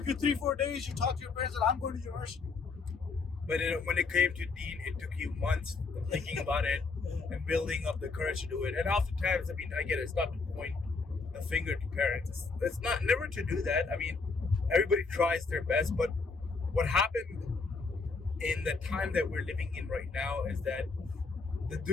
you 3-4 days, you talked to your parents and I'm going to university. But when it came to deen, it took you months of thinking about it and building up the courage to do it. And oftentimes, I mean, I get it, it's not to point the finger to parents. It's not never to do that. I mean, everybody tries their best, but what happened in the time that we're living in right now is that the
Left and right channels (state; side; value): quieter; right; 4.3 dB